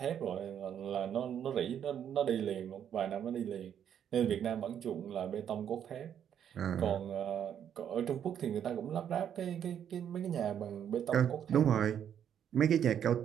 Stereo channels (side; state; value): left; quieter; 9.1 dB